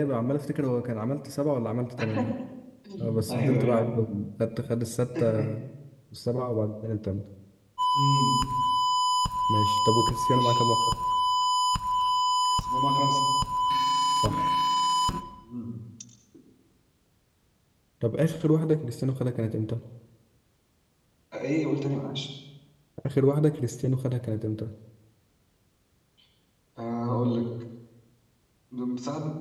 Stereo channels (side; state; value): both; identical; correlation 1.00